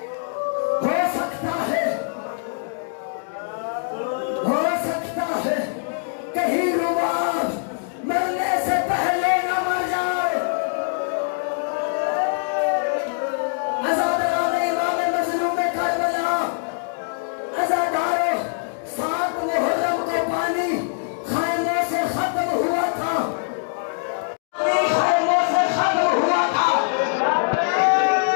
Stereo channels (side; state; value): right; silent; digital silence